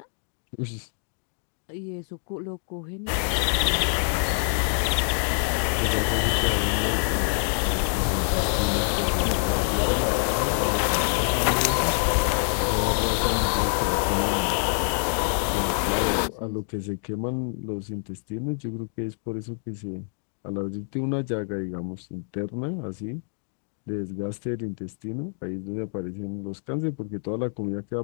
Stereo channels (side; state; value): right; silent; digital silence